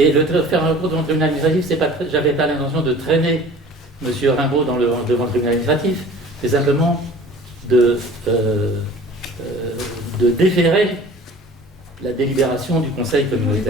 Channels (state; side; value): normal; both; correlation 0.45